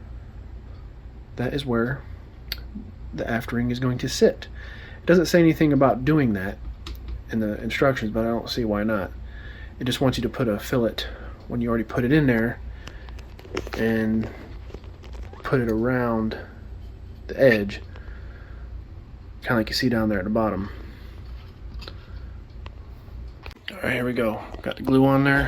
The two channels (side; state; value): both; identical; correlation 1.00